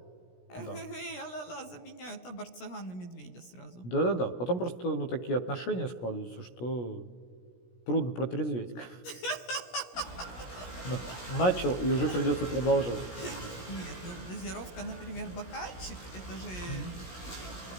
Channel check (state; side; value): late; right; 17 ms